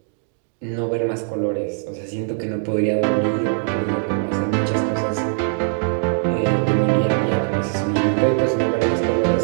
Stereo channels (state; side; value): silent; left; digital silence